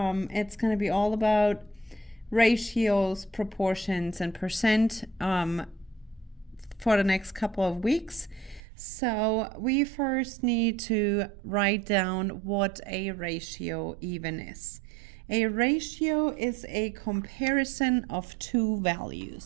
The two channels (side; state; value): left; drops out; at 8.6 s